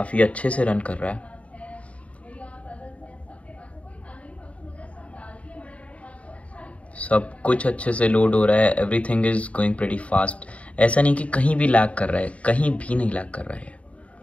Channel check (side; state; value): right; late; 0.065 ms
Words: अच्छे से रन कर रहा है. सब कुछ अच्छे से लोड हो रहा है, everything is going pretty fast. ऐसा नहीं कि कहीं भी लैग कर रहा है, कहीं भी नहीं लैग कर रहा है.